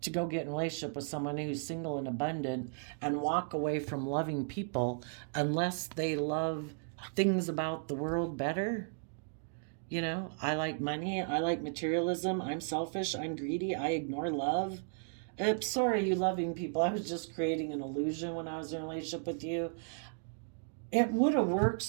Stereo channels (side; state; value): left; silent; digital silence